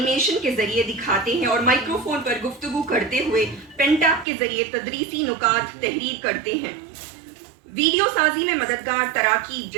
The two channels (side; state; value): left; drops out; at 4.2 s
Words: کے ذریعے دکھاتے ہیں اور مائکروفون پر گفتگو کرتے ہوئے پین ٹیپ کے ذریعے تدریسی نکات تحریر کرتے ہیں۔ ویڈیو سازی میں مددگار تراکیب